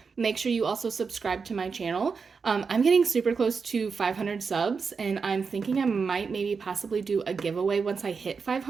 Make sure you also subscribe to my channel. I'm getting super close to 500 subs, and I'm thinking I might maybe possibly do a giveaway once I hit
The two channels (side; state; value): left; quieter; 5.3 dB